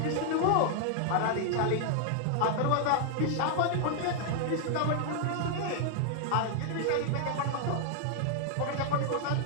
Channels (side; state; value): both; different; correlation 0.00